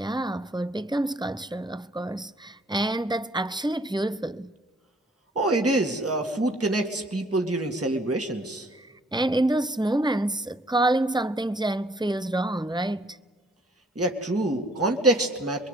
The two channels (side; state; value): both; normal; correlation 0.61